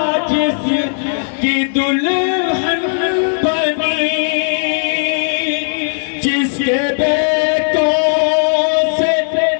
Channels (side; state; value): right; silent; digital silence